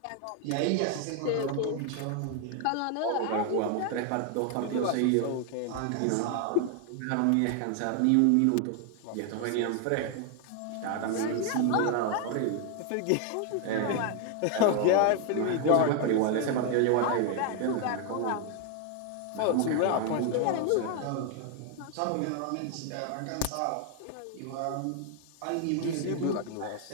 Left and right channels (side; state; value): both; different; correlation 0.00